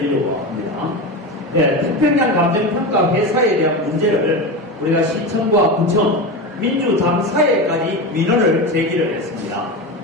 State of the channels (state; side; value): normal; both; correlation 0.22